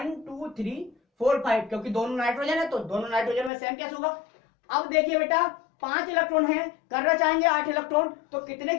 2 3 4 5, क्योंकि दोनों नाइट्रोजन है तो दोनों नाइट्रोजन में सेम कैसे होगा। अब देखिए बेटा 5 इलेक्ट्रॉन है, करना चाहेंगे 8 इलेक्ट्रॉन, तो कितने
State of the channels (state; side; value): drops out; right; at 3.5 s